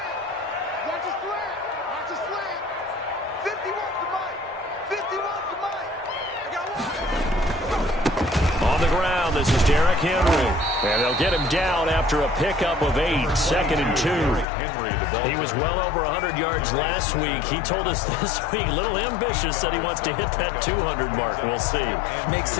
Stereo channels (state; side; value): drops out; right; at 14.5 s